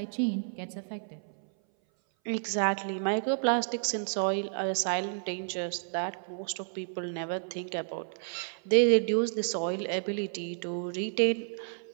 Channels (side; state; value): left; silent; 57 dB below the other